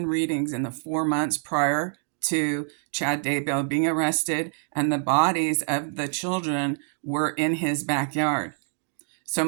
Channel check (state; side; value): silent; left; digital silence